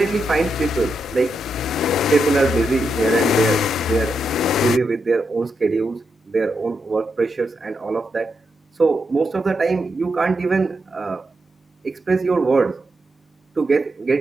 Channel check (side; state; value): both; normal; correlation 0.84